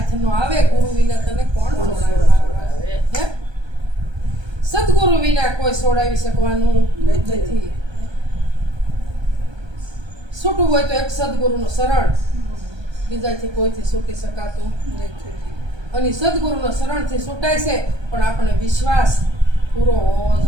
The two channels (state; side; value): late; left; 1.2 ms